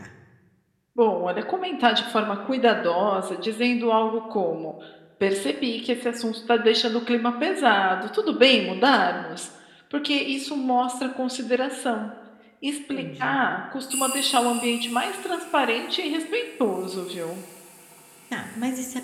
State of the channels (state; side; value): identical; both; correlation 1.00